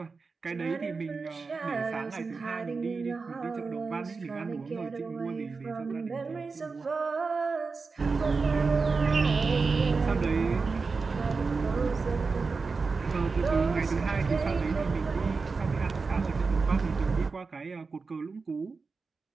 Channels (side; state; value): left; quieter; 4.5 dB